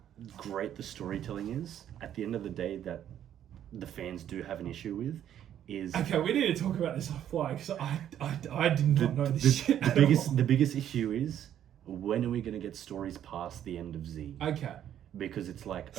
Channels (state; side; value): quieter; left; 10.5 dB